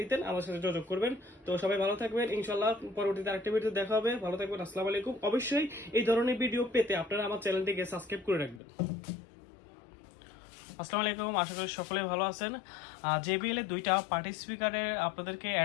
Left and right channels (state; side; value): drops out; right; at 8.6 s